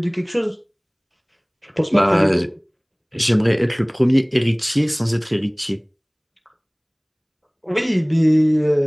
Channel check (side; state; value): both; identical; correlation 1.00